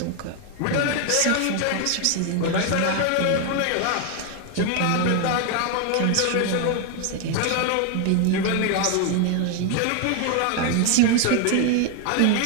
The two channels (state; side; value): different; both; correlation 0.01